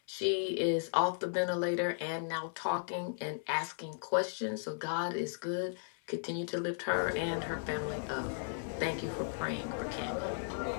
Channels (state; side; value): silent; right; 54 dB below the other